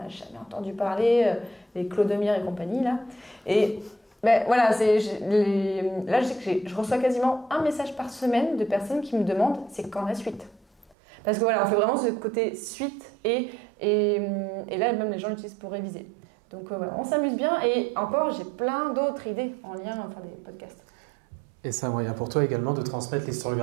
jamais entendu parler, les Clodomir et compagnie, là. Et voilà, là, je sais que je reçois quasiment un message par semaine de personnes qui me demandent, c'est quand la suite ? Parce que voilà, on fait vraiment ce côté suite et là, même les gens l'utilisent pour réviser. Donc voilà, on s'amuse bien et encore, j'ai plein d'autres idées en lien à faire des podcasts. Et c'est un moyen pour toi également de transmettre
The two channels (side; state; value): left; drops out; at 11.0 s